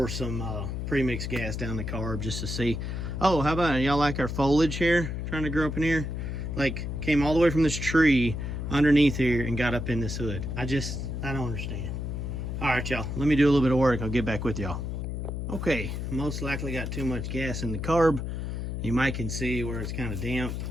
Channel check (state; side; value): noise; left; hum, 4 dB below the sound